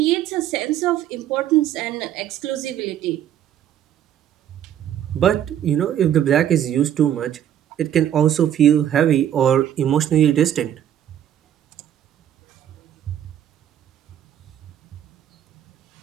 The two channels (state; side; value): quieter; left; 10.5 dB